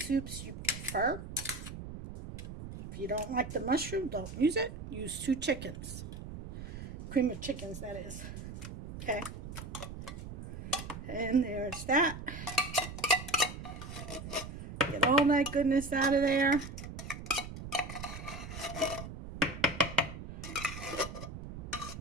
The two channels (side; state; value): right; noise; rumble, 10 dB below the sound